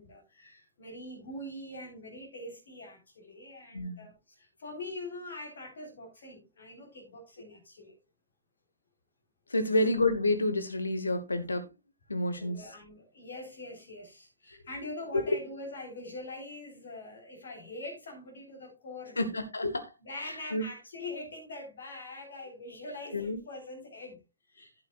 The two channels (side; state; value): both; inverted; correlation -0.69